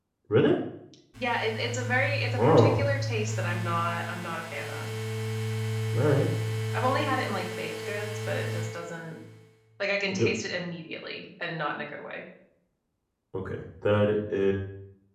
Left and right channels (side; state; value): both; identical; correlation 1.00